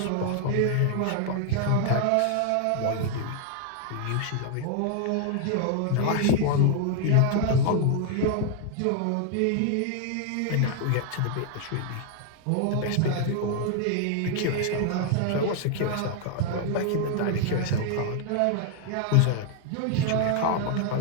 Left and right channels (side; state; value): both; different; correlation 0.00